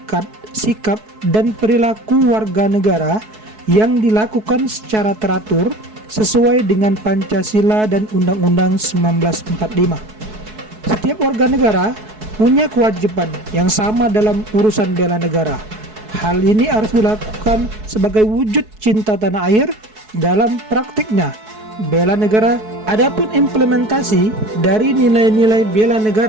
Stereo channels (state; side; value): late; left; 4.7 ms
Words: sikap, dan perilaku warga negara yang dilakukan secara teratur sesuai dengan Pancasila dan Undang-Undang 1945. Setiap warga negara punya kewajiban yang sama dalam urusan bela negara. Hal ini harus dilakukan sebagai wujud cinta tanah air dalam praktiknya bela negara. Adapun implementasi dari nilai-nilai bela